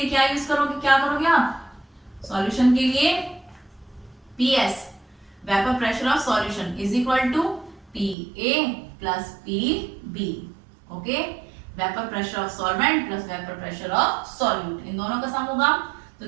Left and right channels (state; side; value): drops out; left; at 8.2 s